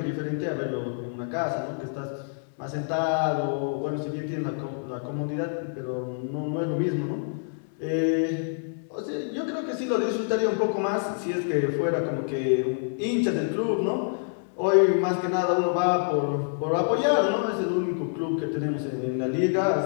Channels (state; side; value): silent; right; digital silence